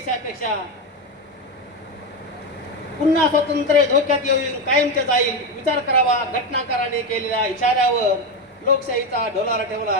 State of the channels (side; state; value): both; normal; correlation 0.13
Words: पुन्हा स्वातंत्र्य धोक्यात येऊन कायमचे जाईल. विचार करावा घटनाकाराने केलेल्या इशाऱ्यावर. लोकशाहीचा डोलारा